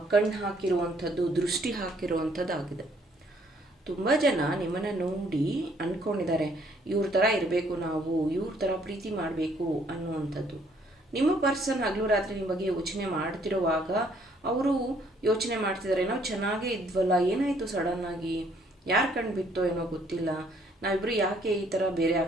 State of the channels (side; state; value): both; normal; correlation 0.65